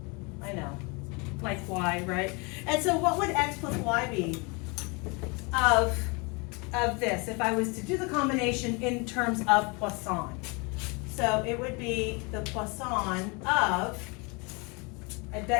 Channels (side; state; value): right; quieter; 30.0 dB